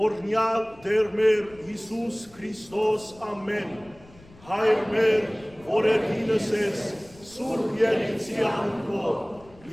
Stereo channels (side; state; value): left; noise; rumble, 25 dB below the sound